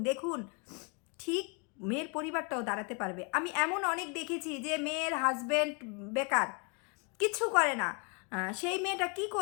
দেখুন, ঠিক মেয়ের পরিবারটাও দাঁড়াতে পারবে। আমি এমন অনেক দেখেছি যে মেয়ের হাজব্যান্ড বেকার, কিছু করে না, সেই মেয়েটা কি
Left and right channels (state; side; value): quieter; right; 33.7 dB